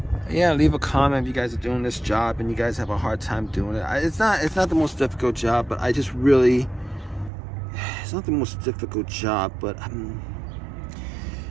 Yeah, leave a comment if you guys are doing this job and you guys have a hard time doing it. It's not the most difficult job, but I just really, it's not the most difficult job, but I'm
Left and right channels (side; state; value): left; drops out; at 7.3 s